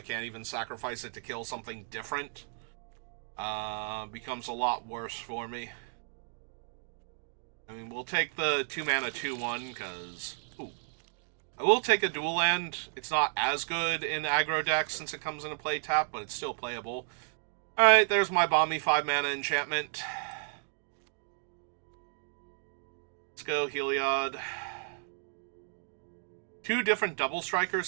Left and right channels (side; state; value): left; silent; digital silence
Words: can't even sacrifice it to kill something different, becomes a lot worse for me. I mean, we'll take the 2-mana 2/1, because... I will take a dual land. It's not as good in aggro decks since it comes into play tap, but it's still playable. Alright, there's my Balmy 5-mana enchantment. Let's go, Heliod. 2 different double